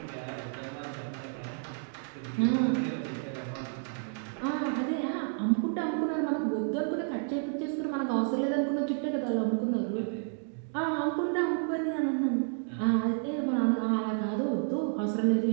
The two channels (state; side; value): silent; left; 57 dB below the other